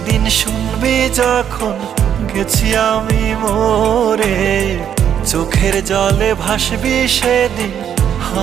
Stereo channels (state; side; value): quieter; left; 9.1 dB